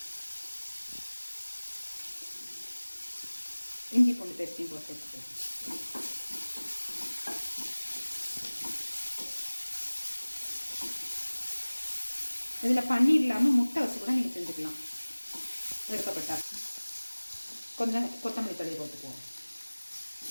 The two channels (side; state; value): both; inverted; correlation -1.00